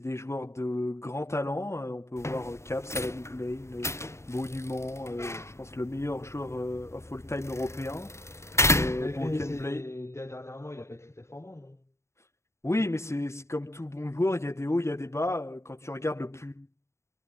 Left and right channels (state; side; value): late; right; 0.13 ms